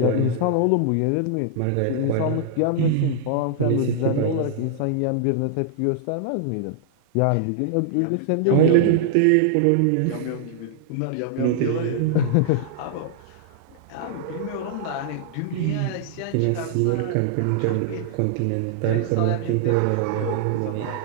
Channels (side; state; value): both; different; correlation -0.01